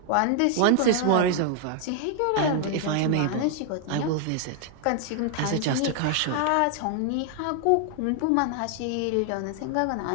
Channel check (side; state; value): both; different; correlation 0.00